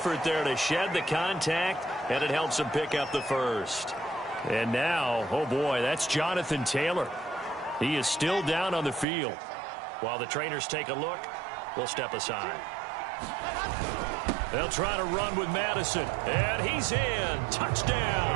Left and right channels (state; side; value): drops out; left; at 9.1 s